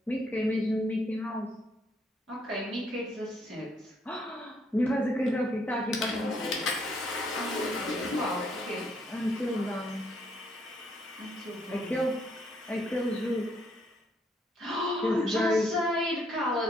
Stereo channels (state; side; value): normal; both; correlation 0.70